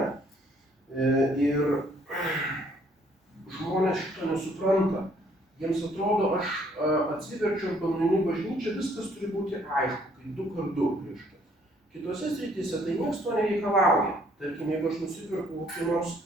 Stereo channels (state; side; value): normal; both; correlation 0.64